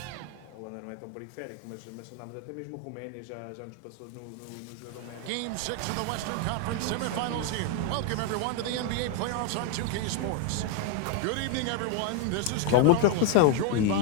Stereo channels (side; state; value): both; different; correlation 0.01